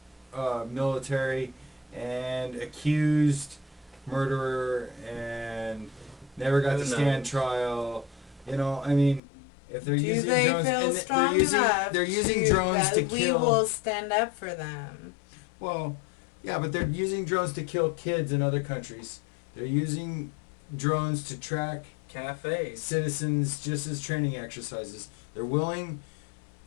military, and accused murderer, and never got Who to stand knows? trial. I mean, if they're Do using they drones, feel and strong enough they're using to, drones that to we kill. will stand up for them? Well, yeah, but they're using drones to kill kids in other countries. They're using drones to track Cafes. citizens just as training exercises. They're willing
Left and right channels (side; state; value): right; drops out; at 9.2 s